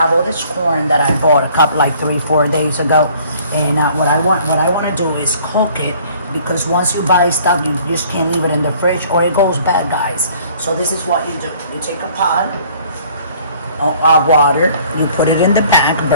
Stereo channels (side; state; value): both; inverted; correlation -0.56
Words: all this corn that I bought a couple like 3-4 days ago. And what I want to do is cook it, because once you buy stuff you just can't leave it in the fridge or it goes bad, guys. So this is what you do. You take a pot of water, you put it in the back